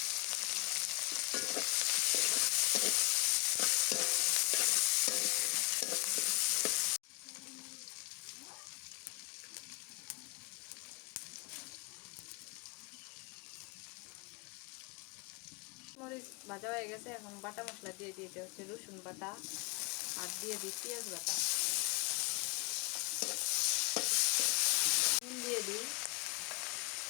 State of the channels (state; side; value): quieter; right; 29.3 dB